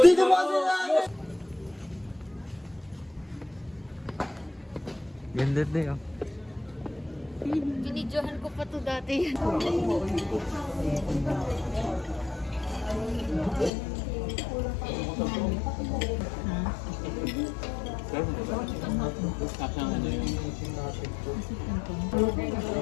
mo kasi na! Ganda din, oh. Binidyohan ko pa to dati.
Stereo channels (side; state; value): right; drops out; at 13.7 s